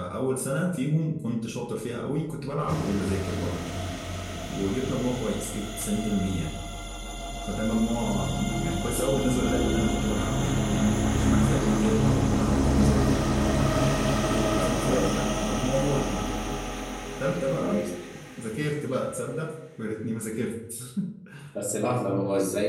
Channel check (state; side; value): identical; both; correlation 1.00